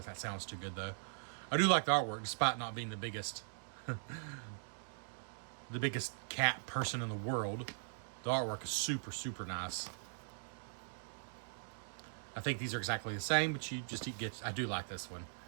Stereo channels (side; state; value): left; silent; digital silence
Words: if that sounds too good though. I do like the artwork, despite not being the biggest, the biggest cat person in the world. The artwork is super, super nice. I think these are exactly the same, but you just get. I do like this one.